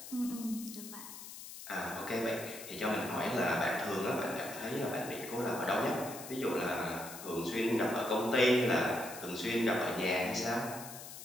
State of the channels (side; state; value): left; noise; hiss, 12 dB below the sound